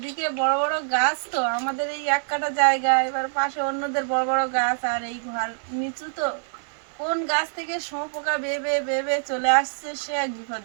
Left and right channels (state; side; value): silent; left; digital silence